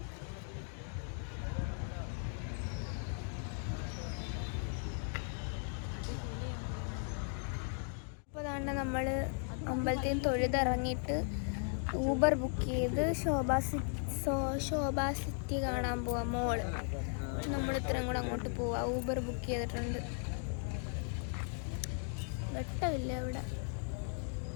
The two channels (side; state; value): right; silent; 53 dB below the other